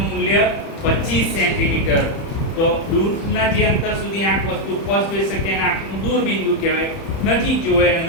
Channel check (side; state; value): right; late; 30 ms